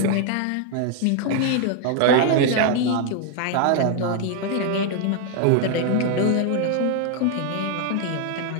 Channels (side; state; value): both; different; correlation 0.00